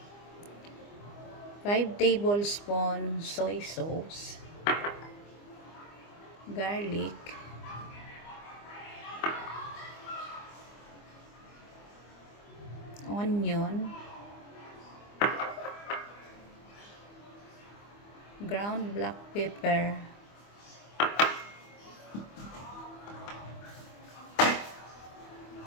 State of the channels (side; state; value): right; late; 25 ms